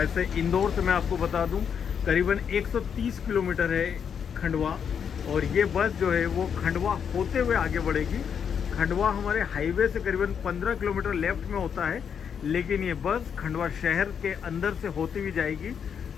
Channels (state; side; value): quieter; right; 7.4 dB